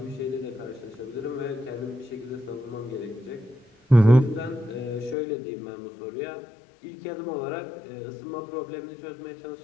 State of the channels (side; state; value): right; drops out; at 5.2 s